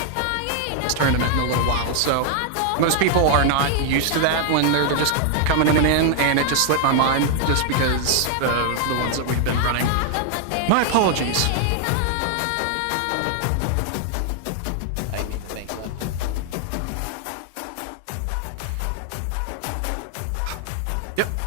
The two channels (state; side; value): different; both; correlation 0.00